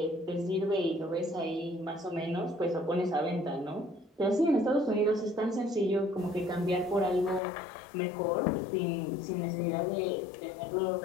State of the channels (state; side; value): drops out; right; at 7.4 s